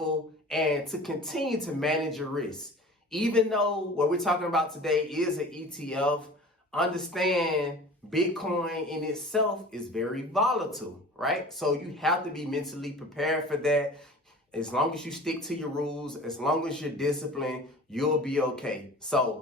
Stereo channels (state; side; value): normal; both; correlation 0.41